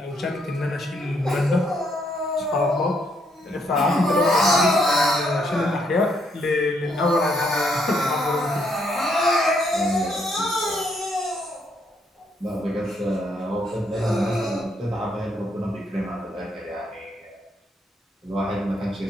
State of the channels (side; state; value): both; normal; correlation 0.73